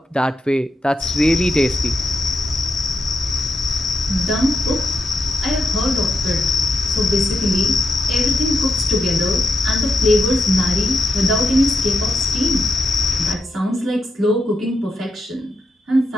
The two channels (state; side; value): normal; both; correlation 0.83